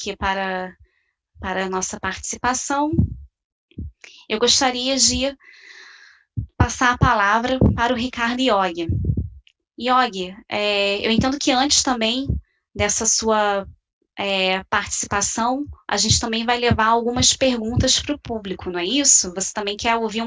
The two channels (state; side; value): identical; both; correlation 1.00